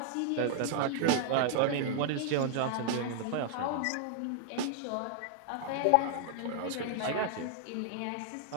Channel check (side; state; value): both; different; correlation 0.00